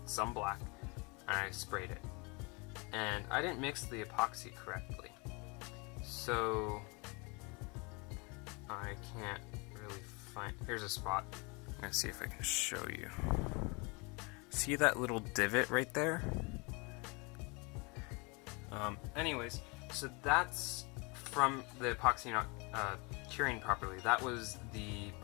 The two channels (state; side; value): quieter; right; 29.5 dB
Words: some black, and I sprayed it. And I didn't mix the epoxy correctly, so I can't really find, here's a spot. I'm gonna see if I can show you. See that little divot right there? Anyways, so that's from the epoxy not curing properly. That was the